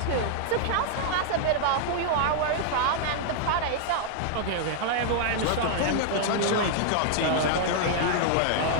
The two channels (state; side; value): different; both; correlation 0.00